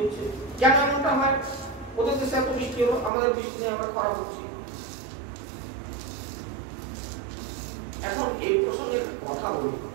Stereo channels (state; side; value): drops out; left; at 3.1 s